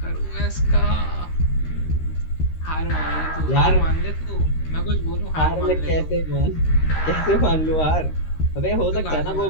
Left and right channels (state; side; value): late; right; 13 ms